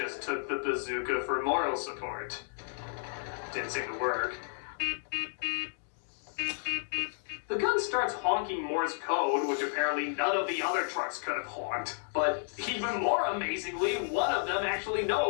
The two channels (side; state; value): right; silent; digital silence